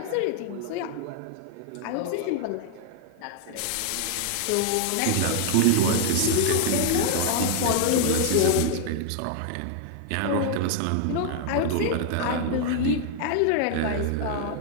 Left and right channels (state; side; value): different; both; correlation 0.00